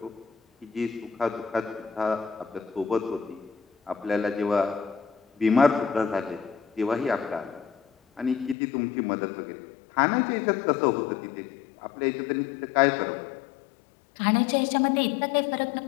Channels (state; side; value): drops out; right; at 8.6 s